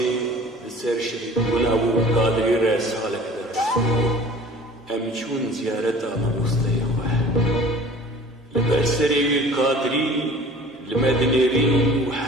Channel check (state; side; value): normal; both; correlation 0.46